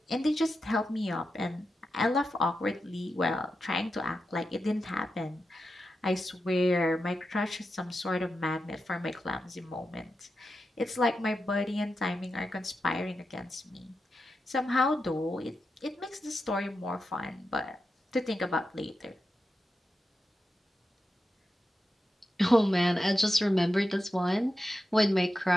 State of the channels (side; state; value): both; normal; correlation 0.89